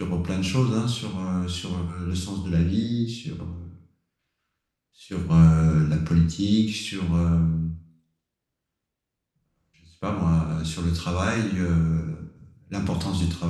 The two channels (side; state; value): both; identical; correlation 1.00